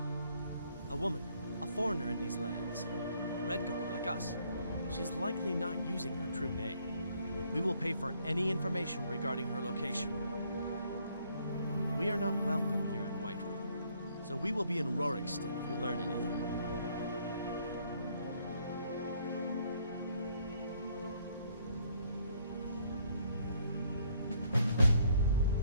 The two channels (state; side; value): inverted; both; correlation -0.66